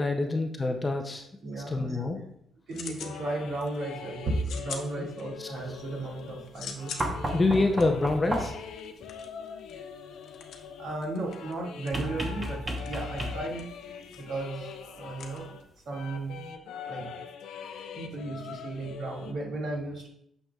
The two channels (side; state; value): both; normal; correlation 0.83